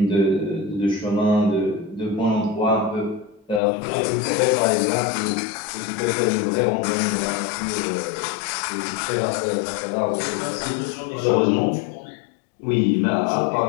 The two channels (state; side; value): drops out; right; at 3.6 s